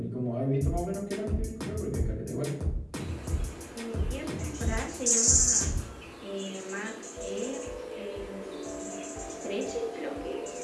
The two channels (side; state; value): both; identical; correlation 1.00